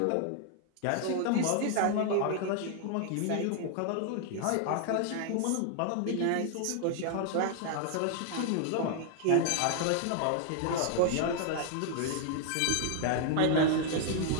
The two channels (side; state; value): both; different; correlation 0.00